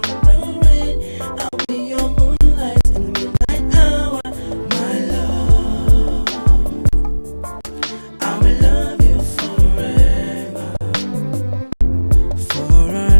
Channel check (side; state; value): both; inverted; correlation -1.00